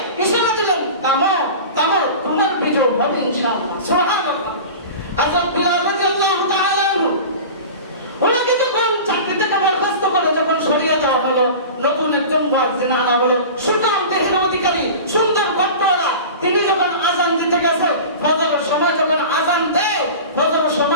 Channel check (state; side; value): inverted; both; correlation -0.34